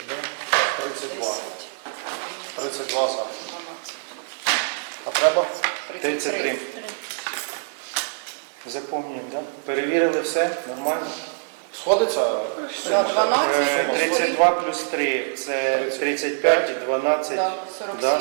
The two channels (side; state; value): left; silent; digital silence